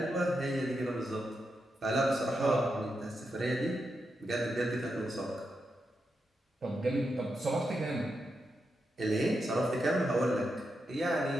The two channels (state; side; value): normal; both; correlation 0.85